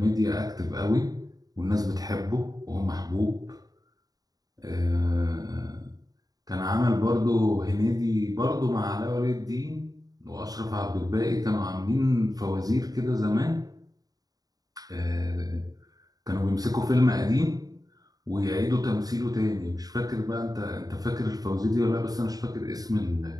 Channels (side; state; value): left; late; 0.18 ms